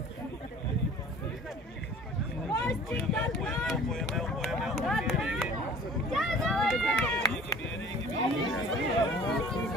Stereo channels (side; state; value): both; normal; correlation 0.47